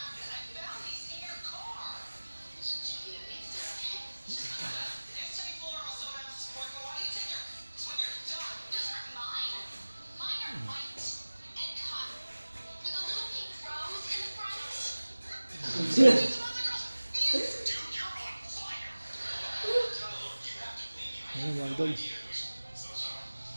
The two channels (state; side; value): inverted; both; correlation -1.00